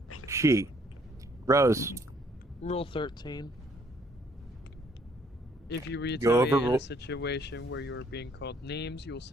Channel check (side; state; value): both; normal; correlation 0.64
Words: She. Rose. Rule 13. If you Go retaliate over in rule- a situation where you are being called names, you will